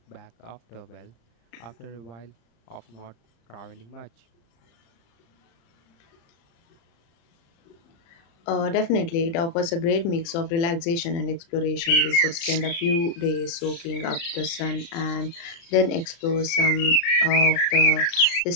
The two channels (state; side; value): late; right; 35 ms